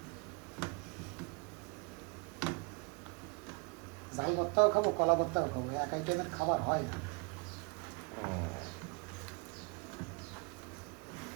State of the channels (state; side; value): quieter; left; 32.5 dB